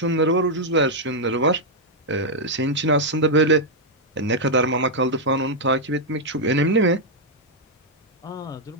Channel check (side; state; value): both; normal; correlation -0.03